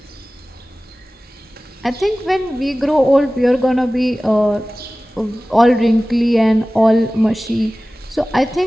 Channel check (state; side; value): normal; both; correlation 0.97